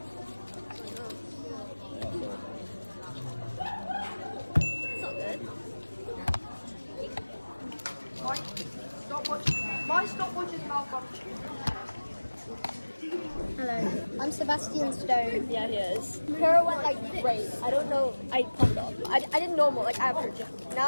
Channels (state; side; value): inverted; both; correlation -1.00